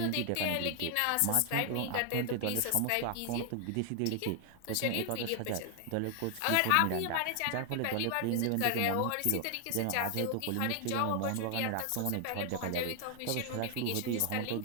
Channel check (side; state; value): both; different; correlation 0.00